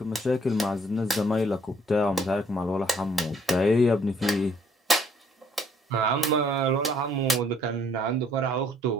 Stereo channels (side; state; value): both; normal; correlation 0.64